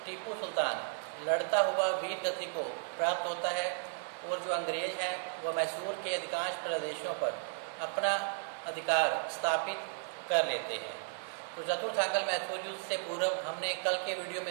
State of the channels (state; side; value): silent; left; digital silence